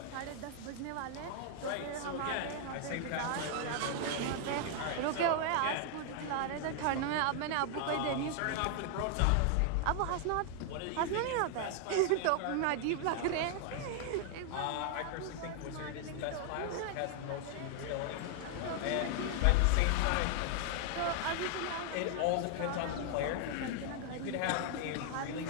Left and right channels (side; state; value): both; different; correlation 0.00